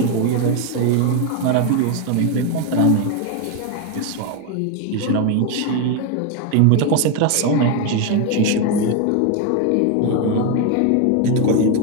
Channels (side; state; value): both; different; correlation 0.02